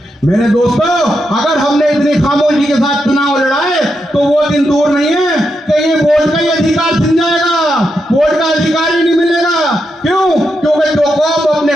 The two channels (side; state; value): both; normal; correlation 0.84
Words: मेरे दोस्तों, अगर हमने इतनी खामोशी के साथ चुनाव लड़ाए तो वो दिन दूर नहीं है कि ये वोट का ही अधिकार छिन जाएगा, वोट का अधिकार ही नहीं मिलेगा। क्यों? क्योंकि जो कौम अपने